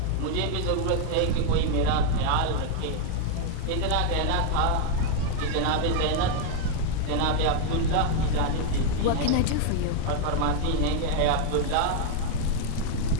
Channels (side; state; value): both; different; correlation 0.00